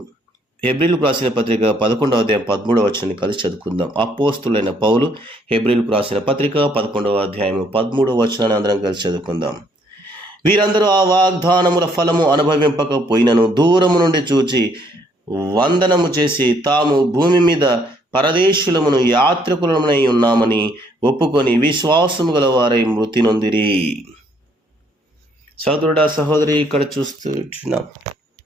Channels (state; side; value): normal; both; correlation 0.67